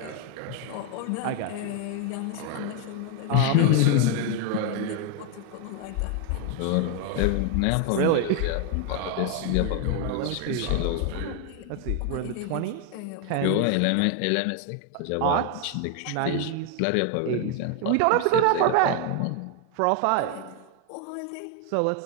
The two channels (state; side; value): different; both; correlation 0.01